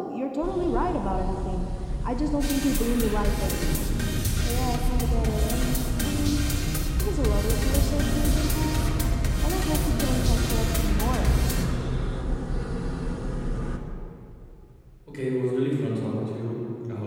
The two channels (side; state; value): both; identical; correlation 1.00